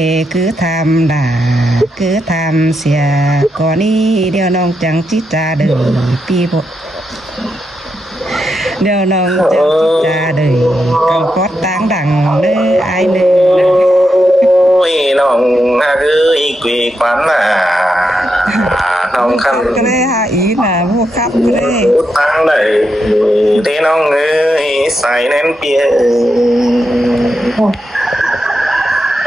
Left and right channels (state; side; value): normal; both; correlation 0.84